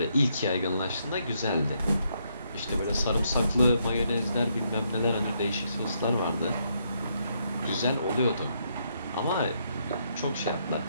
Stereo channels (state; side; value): inverted; both; correlation -0.75